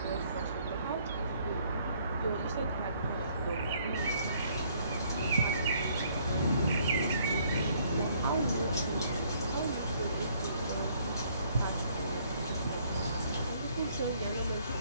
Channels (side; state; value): both; inverted; correlation -0.64